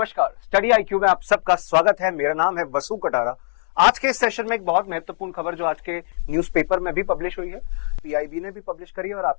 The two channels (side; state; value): right; silent; digital silence